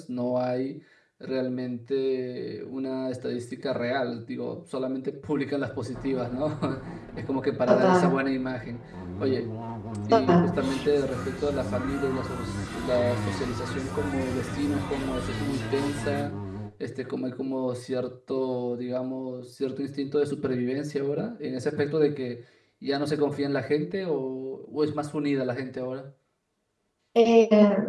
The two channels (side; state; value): both; identical; correlation 1.00